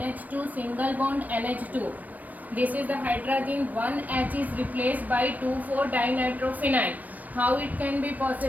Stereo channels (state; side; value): late; left; 0.079 ms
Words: single bond NH2. This is the hydrazine. One H is replaced by 2,4-dinitrophenyl. How it can be